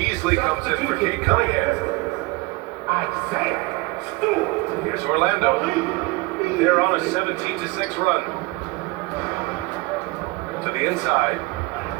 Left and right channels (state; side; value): quieter; left; 23.2 dB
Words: comes in for Kate Cunningham. Here's Orlando. They're on a 17-6 run. To the inside.